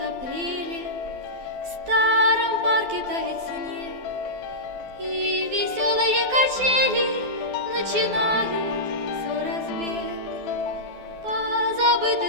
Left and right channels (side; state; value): left; late; 12 ms